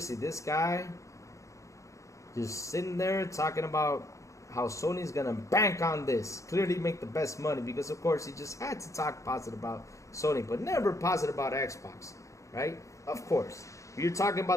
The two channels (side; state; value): right; late; 0.15 ms